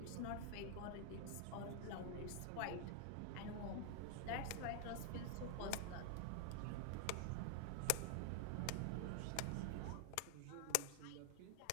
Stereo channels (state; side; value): different; both; correlation 0.00